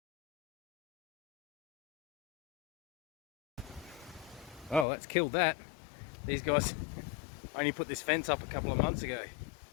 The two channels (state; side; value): drops out; right; at 4.9 s